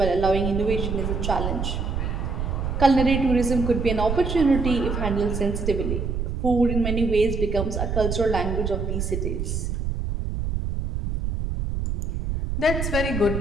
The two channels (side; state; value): right; noise; rumble, 2 dB below the sound